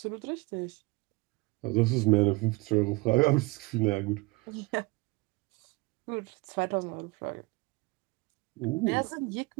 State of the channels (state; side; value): quieter; left; 23.5 dB